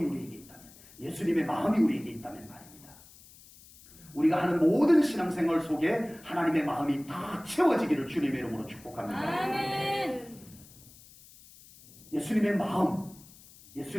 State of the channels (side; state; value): left; noise; hiss, 22 dB below the sound